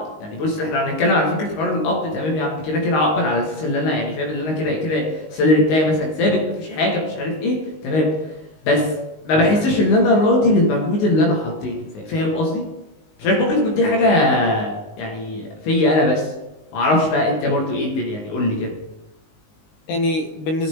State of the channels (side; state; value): right; late; 19 ms